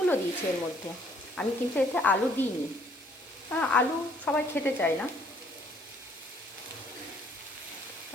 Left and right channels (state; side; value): normal; both; correlation 0.63